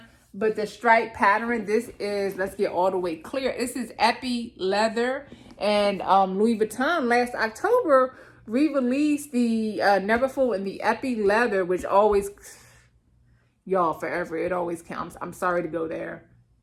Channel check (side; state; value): both; identical; correlation 1.00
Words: but the stripe pattern, this is, let's get all the way clear, this is Epi Leather. And Louis Vuitton last October re-released the Neverfull and the Epi Leather, which always, y'all, forever, it always counts. I'm sorry to go there.